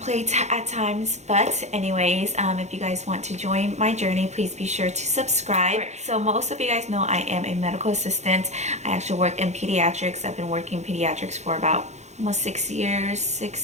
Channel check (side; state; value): left; late; 0.33 ms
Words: at times, but anyways, if you guys want to join my journey, please be sure to subscribe. So most of you guys know I am a medical assistant. I actually work in pediatrics. I've been working in pediatrics for about almost 6 years,